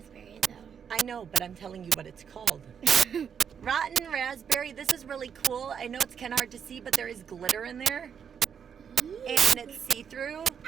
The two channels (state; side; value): quieter; left; 7.5 dB